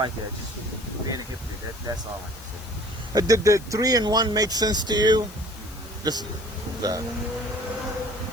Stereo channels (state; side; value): noise; left; hiss, 19 dB below the sound